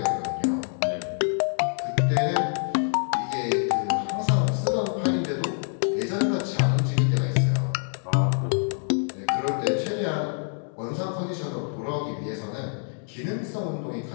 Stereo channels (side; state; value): right; silent; 61 dB below the other